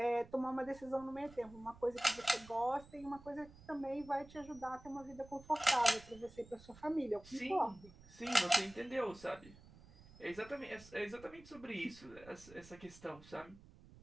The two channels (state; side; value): noise; right; rumble, 20 dB below the sound